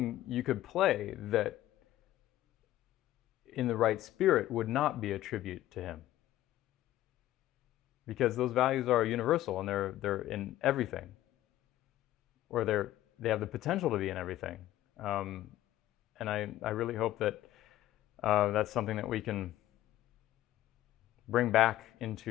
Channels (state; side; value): quieter; right; 14.3 dB